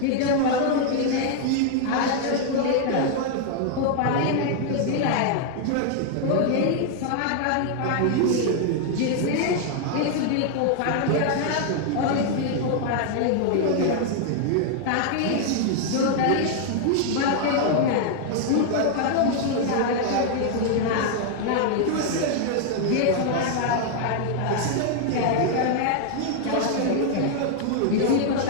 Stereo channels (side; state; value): both; different; correlation 0.00